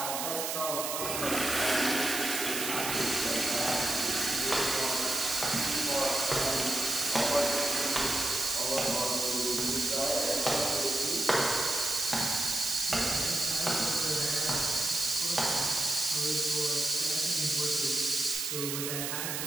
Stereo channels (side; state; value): right; noise; hiss, 2 dB below the sound